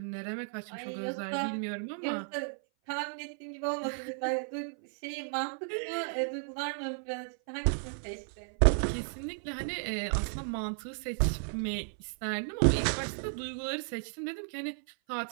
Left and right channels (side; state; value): left; silent; 55 dB below the other